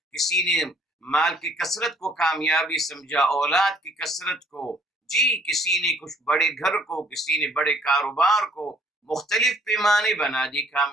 کسی نے مال کی کثرت کو کامیابی سمجھا، اولاد کی کثرت کو، جی کسی نے کچھ بڑے گھر کو، کسی نے بڑے کاروبار کو، مختلف پیمانے بنا دی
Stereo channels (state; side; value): normal; both; correlation 0.60